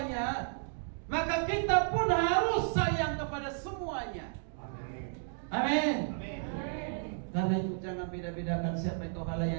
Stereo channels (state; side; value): silent; left; digital silence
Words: maka kita pun harus sayang kepada semuanya. Amin. Karena itu jangan beda-bedakan siapa yang kau